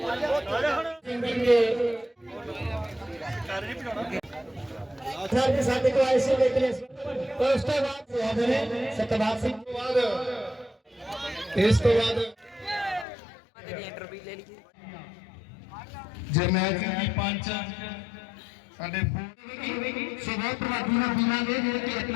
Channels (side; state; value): right; drops out; at 13.1 s